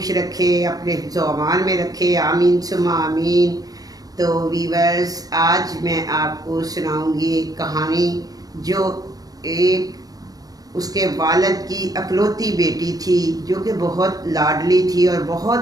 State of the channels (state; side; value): late; left; 0.18 ms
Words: रखे, अपने हिफ्ज़ व अमान में रखे, आमीन सुम्मा आमीन। तो वीवर्स, आज मैं आपको सुनाऊंगी एक कहानी जो एक उसके वालिद की अकलौती बेटी थी, जो कि बहुत लाडली थी और